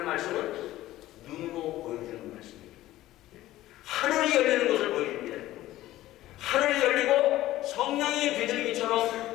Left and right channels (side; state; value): right; quieter; 15.3 dB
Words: 말씀은 눈으로 보여주는 말씀입니다. 하늘이 열리는 것을 보여줍니다. 하늘이 열리고 성령이